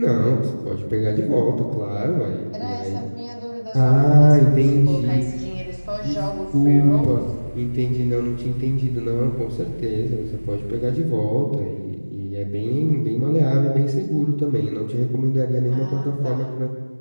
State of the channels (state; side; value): inverted; both; correlation -1.00